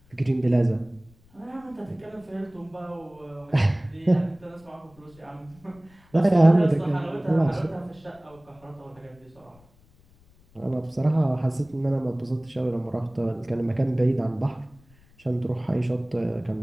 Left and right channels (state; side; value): noise; left; rumble, 29 dB below the sound